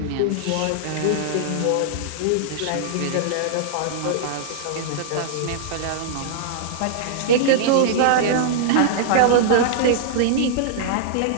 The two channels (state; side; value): different; both; correlation -0.01